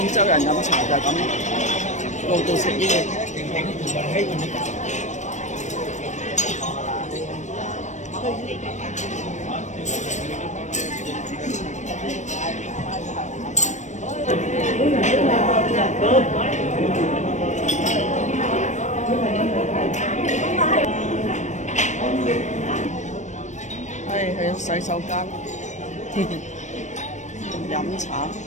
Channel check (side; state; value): right; late; 0.34 ms